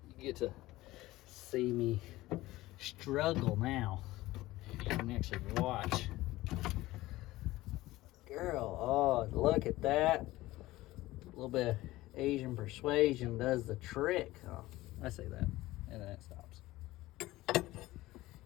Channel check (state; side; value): quieter; right; 17.8 dB